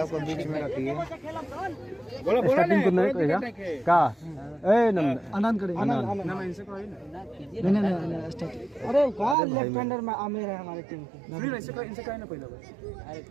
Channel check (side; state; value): left; drops out; at 9.3 s